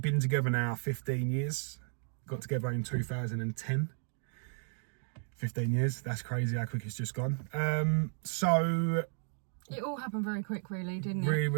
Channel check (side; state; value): left; silent; 55 dB below the other